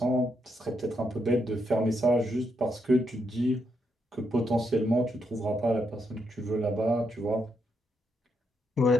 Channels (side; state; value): both; normal; correlation 0.79